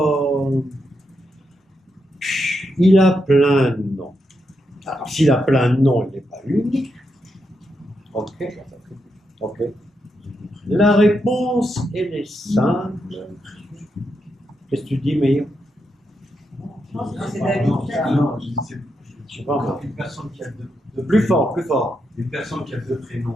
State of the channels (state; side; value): normal; both; correlation 0.83